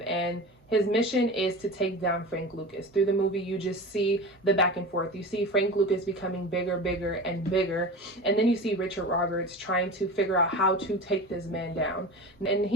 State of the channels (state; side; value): normal; both; correlation 0.31